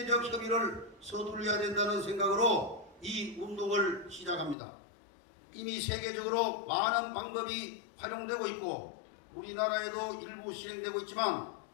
협의를 서둘러야 된다는 생각으로 이 운동을 시작합니다. 이미 세계적으로 많은 방법이 활용되고 있고 우리나라에도 일부 실행되고 있지만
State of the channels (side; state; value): right; drops out; at 4.5 s